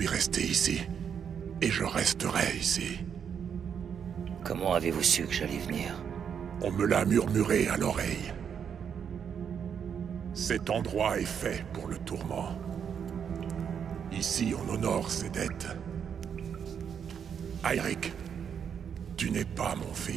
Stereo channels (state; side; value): quieter; left; 7.6 dB